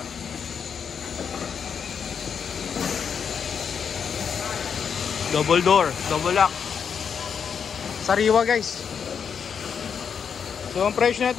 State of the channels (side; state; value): right; quieter; 7.0 dB